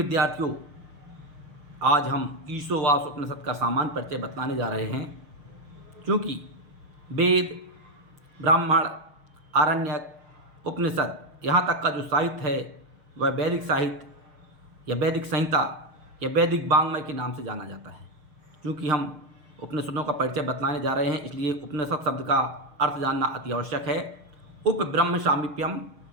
आज हम ईशोवास उपनिषद का सामान्य परिचय बतलाने जा रहे हैं। क्योंकि वेद, ब्राह्मण, आरण्यक, उपनिषद यहाँ तक का जो साहित्य है वह वैदिक साहित्य या वैदिक संहिता या वैदिक वाङ्मय के नाम से जाना जाता है। क्योंकि हम उपनिषदों का परिचय बतलाने जा रहे हैं, इसलिए उपनिषद शब्द का अर्थ जानना अति आवश्यक है। उप ब्रह्म सामीप्यम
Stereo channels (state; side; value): late; left; 6.8 ms